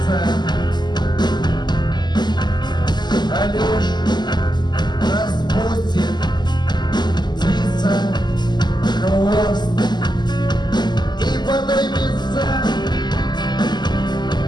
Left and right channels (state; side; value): late; right; 0.21 ms